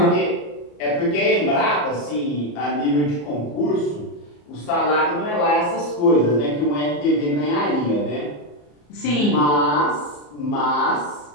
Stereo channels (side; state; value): right; late; 34 ms